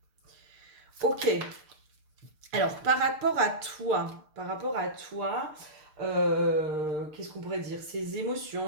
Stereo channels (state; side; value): late; left; 6.6 ms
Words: Ok. Alors, par rapport à toi, qu'est-ce qu'on pourrait dire? Ses